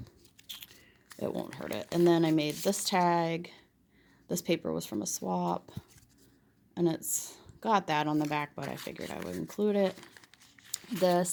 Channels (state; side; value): identical; both; correlation 1.00